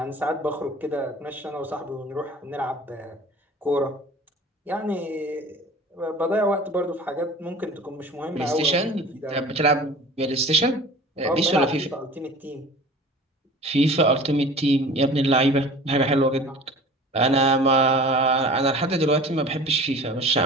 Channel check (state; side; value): normal; both; correlation 0.42